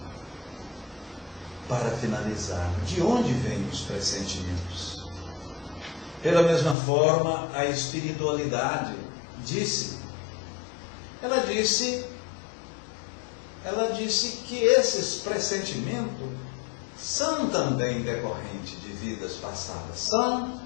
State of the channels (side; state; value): right; drops out; at 6.8 s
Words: Para finalizar, de onde vêm os pressentimentos? Pela mesma forma, a espiritualidade ela disse que esses pressentimentos são também decorrentes de vidas passadas, são